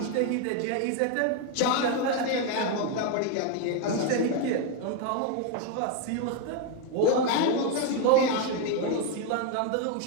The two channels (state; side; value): different; both; correlation 0.01